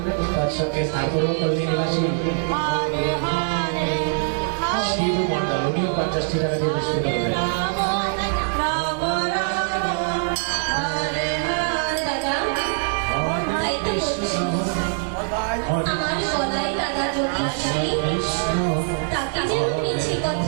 তার সঙ্গে সাগর কলোনি নিবাসী শিবু মন্ডল উনিও 50 টাকা দিয়ে পুরস্কৃত করলেন। আমার গলায় দাদা যদি আসে তাকে যেন মিছি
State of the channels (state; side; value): silent; left; digital silence